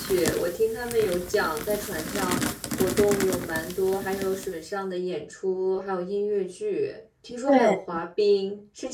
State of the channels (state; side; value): identical; both; correlation 1.00